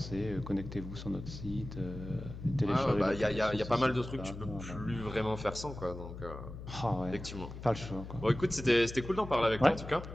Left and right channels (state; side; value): noise; left; hum, 11 dB below the sound